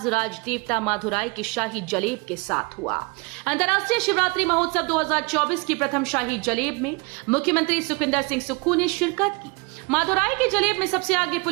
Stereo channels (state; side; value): quieter; left; 28.6 dB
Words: राजदेवता मदुराई के शाही जलेब के साथ हुआ। अंतर्राष्ट्रीय शिवरात्रि महोत्सव 2024 की प्रथम शाही जलेब में मुख्यमंत्री सुखविंदर सिंह सुक्खू ने शिरकत की। मदुराई के जलेब में सबसे आगे